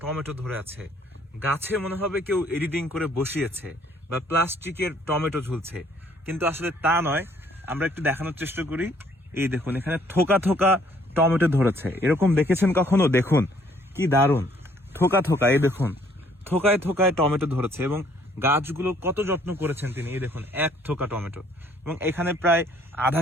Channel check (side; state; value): both; normal; correlation 0.62